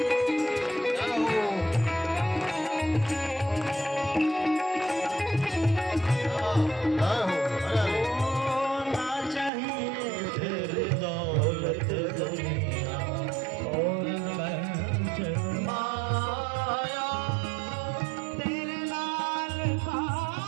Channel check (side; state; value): left; drops out; at 9.5 s